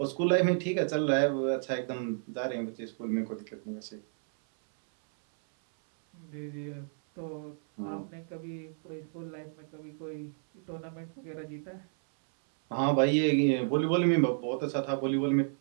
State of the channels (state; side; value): silent; left; 57 dB below the other